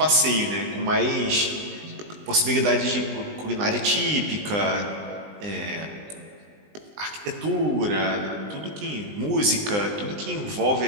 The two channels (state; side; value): late; left; 20 ms